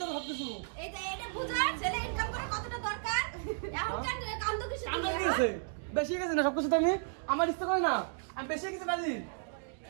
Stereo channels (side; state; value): left; silent; digital silence